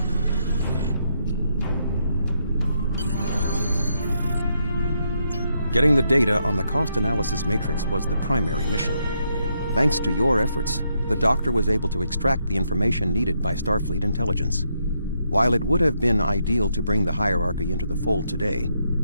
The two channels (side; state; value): both; inverted; correlation -0.78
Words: Getting the data on the cost analysis matrix was the primary mission. Thanks to your efforts, the Doctor was able to extract the information needed by Starfleet intelligence. While it would have been ideal to bring the hierarchy into the fold today,